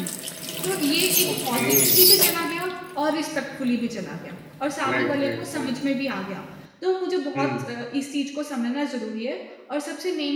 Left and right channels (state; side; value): identical; both; correlation 1.00